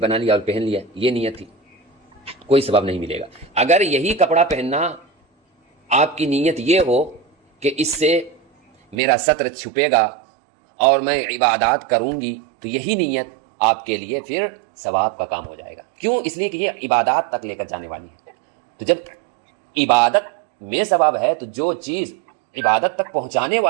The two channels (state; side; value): drops out; left; at 9.0 s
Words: لیا اور پہن لیا، یہ نیت تھی، کوئی ثواب نہیں ملے گا۔ اگر یہی کپڑا پہننا آپ کی نیت یہ ہو کہ اس سے میرا ستر چھپے گا اور میں عبادات کروں گی، تو یہی نیت آپ کے لیے پھر ثواب کا کام ہو جائے گا۔ کیوں؟ اس لیے کہ یہ عبادات تک لے کر جانے والی ہے۔ تو جب عبادت میں ثواب ہے تو جو چیز عبادت تک پہنچانے